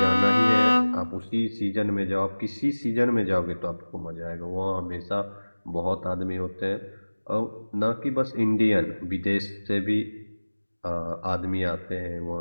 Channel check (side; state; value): both; inverted; correlation -1.00